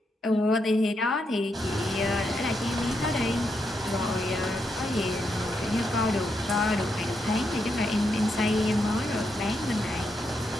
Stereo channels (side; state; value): both; normal; correlation 0.81